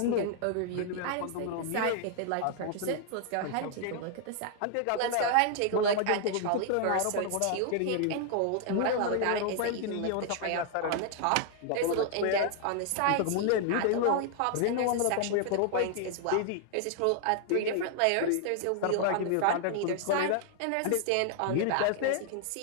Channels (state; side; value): different; both; correlation 0.00